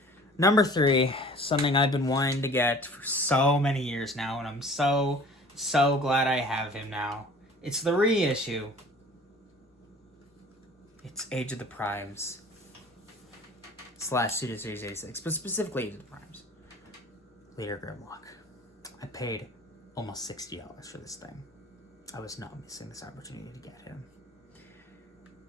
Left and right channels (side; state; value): both; normal; correlation 0.46